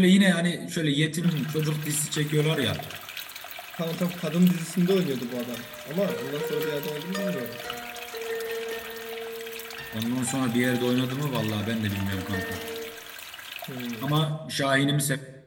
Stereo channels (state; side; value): identical; both; correlation 1.00